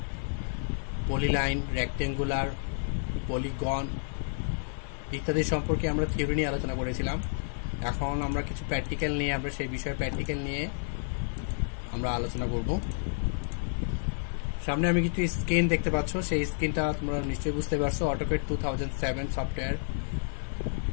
পলিলাইন, রেক্টেঙ্গুলার, পলিগন ইত্যাদি সম্পর্কে আমরা থিওরি নিয়ে আলোচনা করেছিলাম। এখন আমরা কিছু প্র্যাকটিক্যাল নিয়ে সেই বিষয়ে প্র্যাকটিক্যাল নিয়ে আমরা আলোচনা করব। সামনে আমি কিছু স্ক্রিন দেখতে পাচ্ছ, সেই স্ক্রিনটা তোমরা নিশ্চয়ই বুঝতে পারছো। অটোক্যাড 2007 সফটওয়্যার,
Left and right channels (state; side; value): silent; right; 58 dB below the other